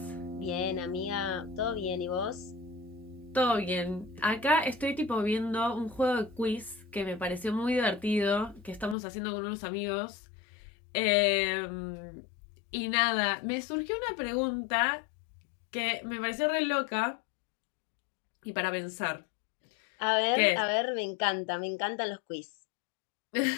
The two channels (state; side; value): drops out; right; at 9.0 s